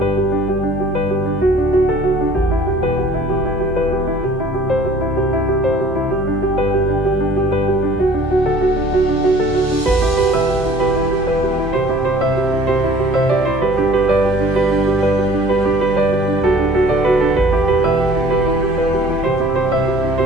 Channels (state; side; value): normal; both; correlation 0.50